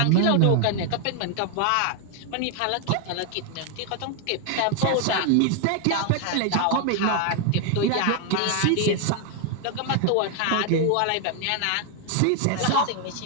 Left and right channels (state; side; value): different; both; correlation 0.00